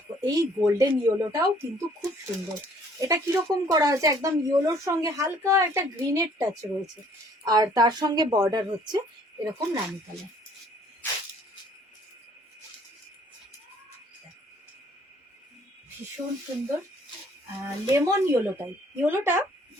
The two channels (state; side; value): normal; both; correlation 0.59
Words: এই গোল্ডেন ইয়েলোটাও কিন্তু খুব সুন্দর, এটা কিরকম করা হয়েছে, একদম ইয়েলোর সঙ্গে হালকা একটা গ্রিনের টাচ রয়েছে, আর তার সঙ্গে বর্ডার হচ্ছে এরকম রানি কালার। ভীষণ সুন্দর, লেমন ইয়েলোটা